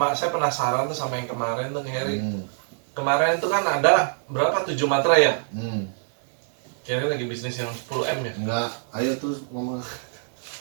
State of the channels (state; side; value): silent; left; digital silence